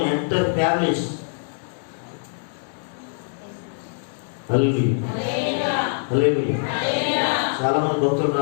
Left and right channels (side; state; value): right; silent; digital silence